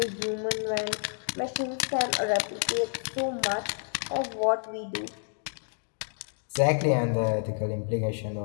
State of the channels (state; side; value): silent; right; 58 dB below the other